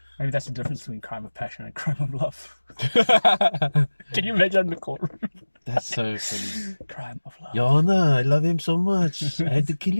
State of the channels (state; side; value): inverted; both; correlation -1.00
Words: Maybe that's the difference between crime of passion and crime of love. Can you imagine in the courtroom? That's so funny. Crime of love. Your Honor, I love him so much. I had to kill